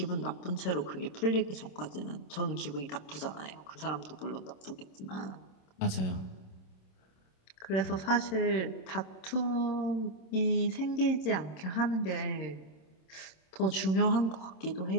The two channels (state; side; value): late; right; 26 ms